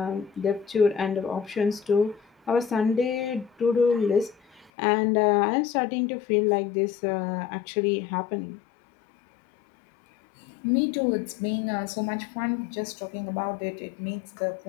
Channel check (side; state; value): right; drops out; at 4.7 s